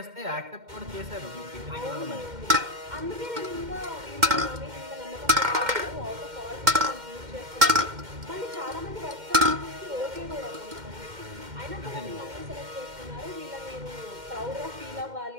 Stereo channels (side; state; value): left; late; 2.1 ms